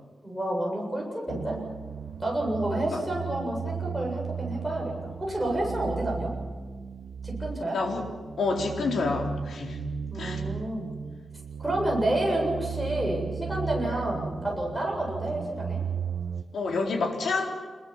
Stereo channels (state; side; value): normal; both; correlation 0.86